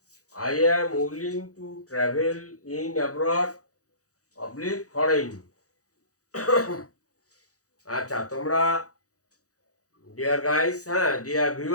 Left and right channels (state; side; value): late; right; 0.66 ms